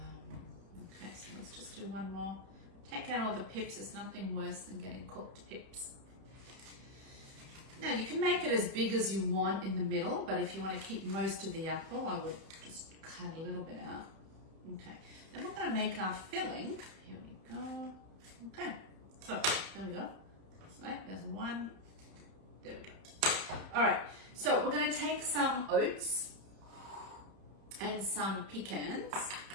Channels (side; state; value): left; late; 31 ms